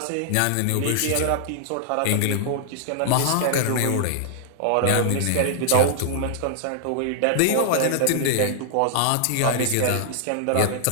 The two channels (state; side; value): different; both; correlation -0.01